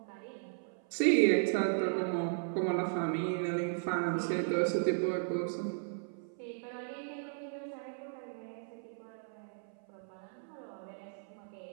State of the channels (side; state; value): left; silent; 54 dB below the other